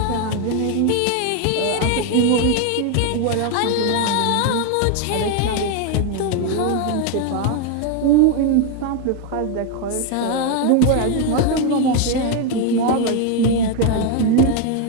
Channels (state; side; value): different; both; correlation 0.01